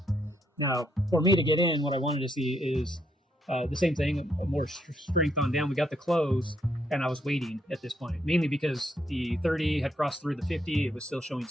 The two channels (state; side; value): normal; both; correlation 0.75